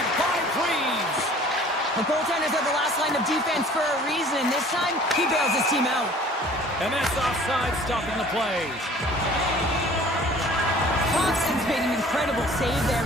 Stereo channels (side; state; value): both; normal; correlation 0.50